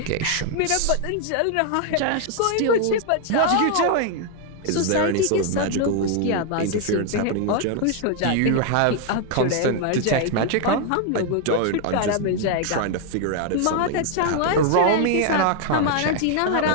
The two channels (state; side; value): different; both; correlation 0.00